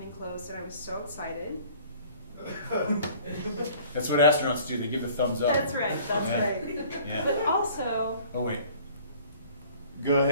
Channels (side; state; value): both; inverted; correlation -0.51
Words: close and I was so excited. That's what astronauts do. They give a thumbs up. That's right, that's Yeah. right. Yeah. But also, Oh wait. Go